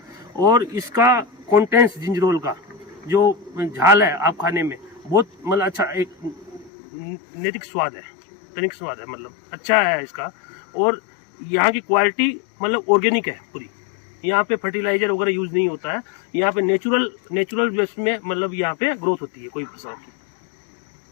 और इसका कॉन्टेंस जिंजरोल का जो झाल है आप खाने में बहुत मतलब अच्छा एक नैतिक स्वाद है, तनिक स्वाद है, मतलब अच्छा है इसका। और यहाँ की क्वालिटी मतलब ऑर्गेनिक है पूरी। यहाँ पे फर्टिलाइजर वगैरह यूज नहीं होता है। यहाँ पे नेचुरल बेस में मतलब यहाँ पे ग्रोथ होती है कोई फसल की।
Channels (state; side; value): drops out; right; at 6.7 s